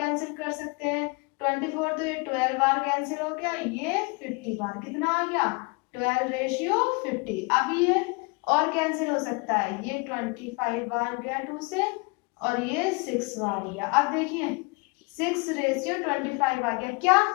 कर सकते हैं। 24 तो ये 12 बार कैंसिल हो गया, ये 50 बार, कितना आ गया 12:50। अब ये और कैंसिल हो सकता है, ये 25 बार गया 2 से और ये 6 बार गया। अब देखिए 6:25 आ गया। क्या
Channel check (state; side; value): quieter; right; 29.9 dB